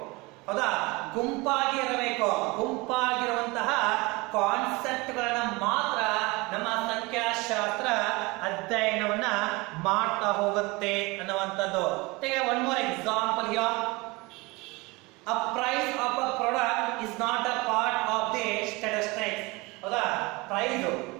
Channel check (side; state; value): left; quieter; 24.5 dB